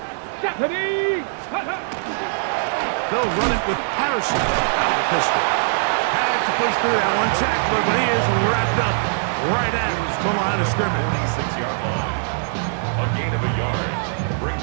Stephanie. They'll run it with Patterson out of the pistol. Had to push through that one tackler, but he is wrapped up right at the line of scrimmage. 26-yard line. A gain of a yard.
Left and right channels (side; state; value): left; silent; digital silence